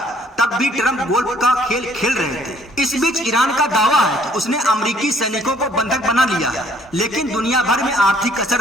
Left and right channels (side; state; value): both; normal; correlation 0.61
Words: तब भी ट्रंप गोल्फ का खेल खेल रहे थे। इस बीच ईरान का दावा है कि उसने अमेरिकी सैनिकों को बंधक बना लिया है, लेकिन दुनिया भर में आर्थिक